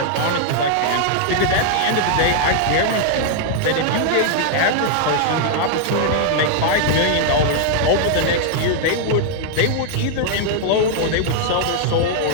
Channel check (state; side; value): different; both; correlation -0.01